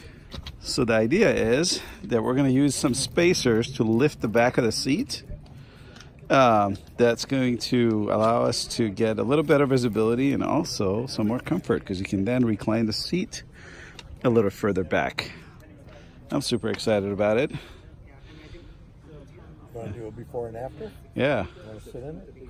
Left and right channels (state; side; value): identical; both; correlation 1.00